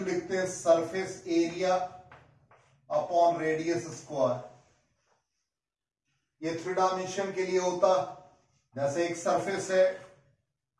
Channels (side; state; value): both; identical; correlation 1.00